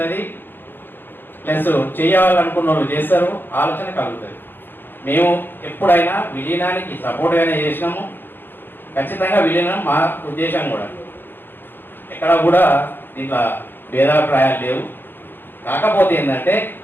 ప్లస్ చేయాలనుకున్న వాళ్ళు చేస్తారు, ఆలోచన కలుగుతుంది. మేము ఎప్పుడైనా విలీనానికి సపోర్ట్గానే చేసినాము. ఖచ్చితంగా విలీనం మా ఉద్దేశం కూడా. ఎక్కడ కూడా దీంట్లో భేదాభిప్రాయాలు లేవు. కాకపోతే ఏంటంటే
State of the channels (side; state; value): right; late; 0.099 ms